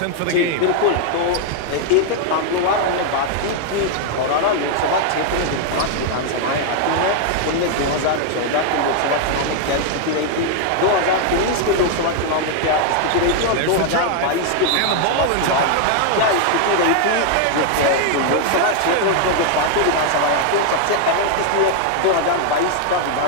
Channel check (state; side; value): different; both; correlation 0.00